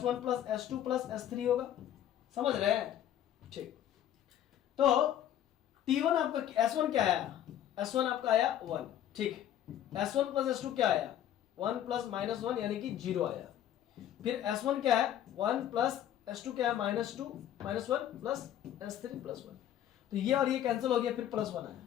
+ S2 + S3 होगा। समझ रहे हैं? ठीक। तो T1 आपका S1 क्या आया? S1 आपका आया 1, ठीक। S1 + S2 क्या आया? 1 + -1 यानी कि 0 आया। फिर S1 क्या है? 1 + S2 क्या है? -2 -1 + S3 +1। तो ये और ये कैंसिल हो गया, फिर +1 आया।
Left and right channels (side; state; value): right; quieter; 11.2 dB